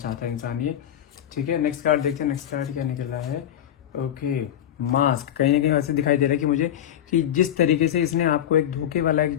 है इंसान ये। ठीक है, नेक्स्ट कार्ड देखते हैं, नेक्स्ट कार्ड क्या निकला है। Okay, mask. कहीं ना कहीं ऐसे दिखाई दे रहा है कि मुझे कि जिस तरीके से इसने आपको एक धोखे वाला एक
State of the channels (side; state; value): right; quieter; 10.7 dB